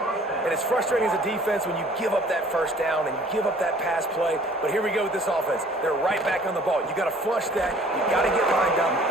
And it's frustrating as a defense when you give up that first down and you give up that pass play. But here we go with this offense. They're right back on the ball. You got to flush that. You got to get lined up,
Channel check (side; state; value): both; normal; correlation 0.53